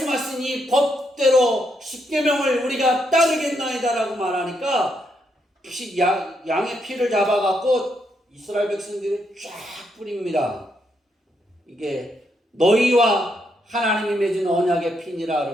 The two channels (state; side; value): normal; both; correlation 0.78